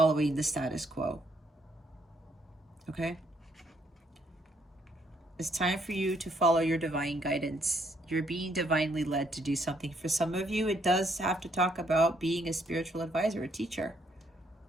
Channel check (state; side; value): normal; both; correlation 0.71